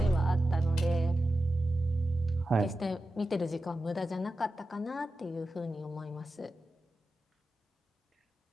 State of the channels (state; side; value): normal; both; correlation 0.92